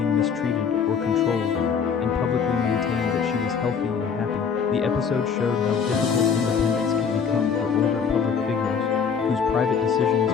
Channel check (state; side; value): quieter; right; 6.5 dB